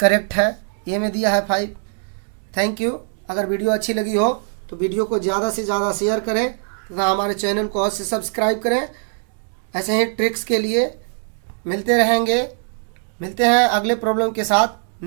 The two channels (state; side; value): silent; left; 58 dB below the other